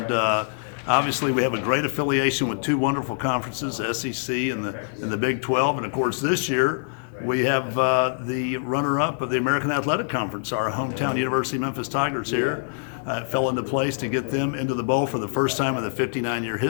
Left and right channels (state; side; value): silent; right; digital silence